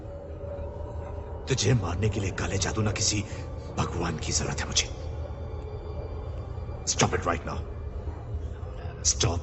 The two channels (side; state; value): both; identical; correlation 1.00